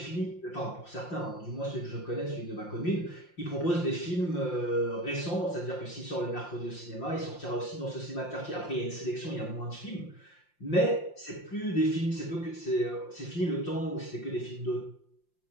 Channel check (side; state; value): right; late; 5.7 ms